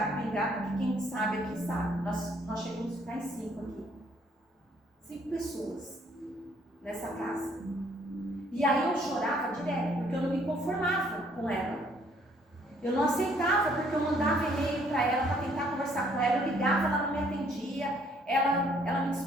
pingado, porque quem sabe aqui sabe. Nós chegamos a ficar em 5 aqui. 5 pessoas nessa casa. E aí eu chorava direto, porque eu não me conformava com ela. Eu não aceitava, porque eu mandava e-mail para ela para tentar conversar com ela, eu ligava, ela não me atendia, ela me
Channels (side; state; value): both; normal; correlation 0.64